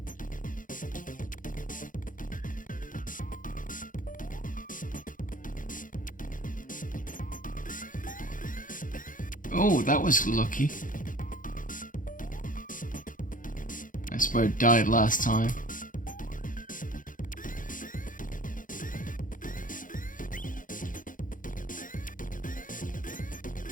Oh, that was lucky. That's where I died last time.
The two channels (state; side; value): late; right; 0.39 ms